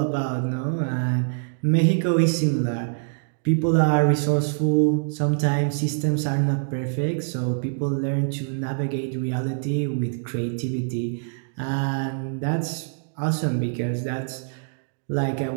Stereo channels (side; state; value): left; silent; digital silence